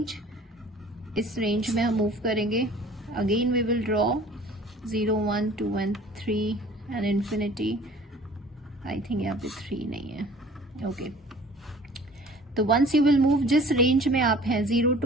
इस रेंज में हम मूव करेंगे. Again we will draw 0, 1, 2 and 3 and infinity. I think यहाँ पे 3 नहीं है. ओके तो वंस यू विल मूव, जिस रेंज में आप हैं 0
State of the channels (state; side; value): normal; both; correlation 0.49